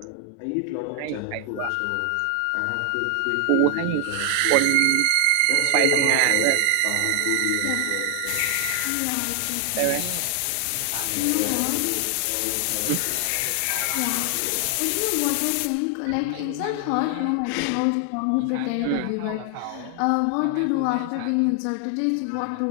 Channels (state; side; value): different; both; correlation 0.00